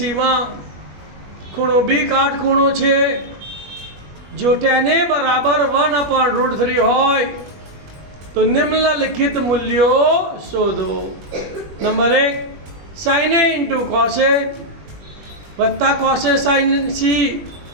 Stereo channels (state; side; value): late; left; 20 ms